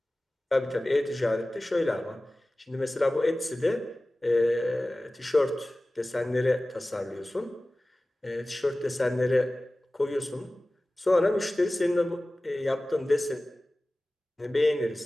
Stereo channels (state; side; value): normal; both; correlation 0.97